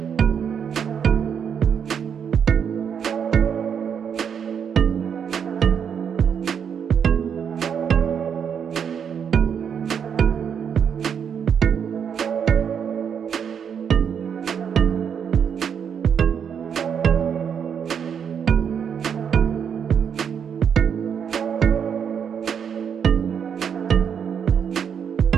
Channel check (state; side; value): quieter; left; 7.6 dB